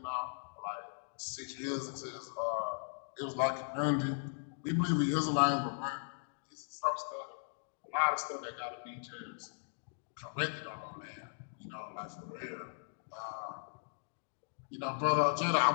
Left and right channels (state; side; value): silent; right; digital silence